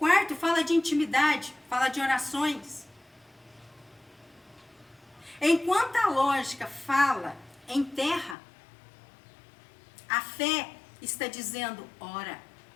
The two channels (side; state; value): right; drops out; at 8.3 s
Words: fala de intimidade, fala de orações. Enquanto a lógica fala em terra, a fé está dizendo, ora.